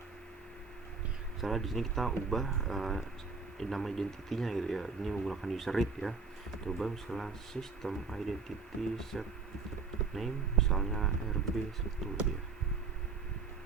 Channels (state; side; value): quieter; left; 4.7 dB